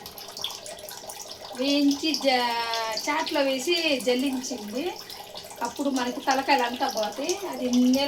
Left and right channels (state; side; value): identical; both; correlation 1.00